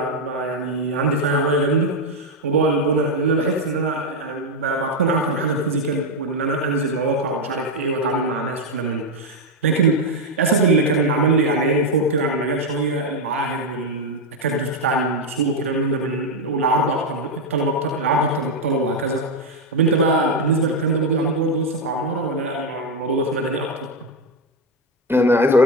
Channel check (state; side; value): normal; both; correlation 0.05